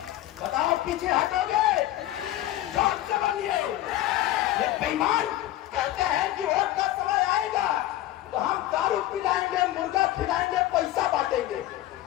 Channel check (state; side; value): quieter; right; 14.7 dB